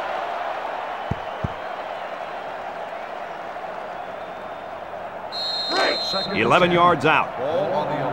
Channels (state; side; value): identical; both; correlation 1.00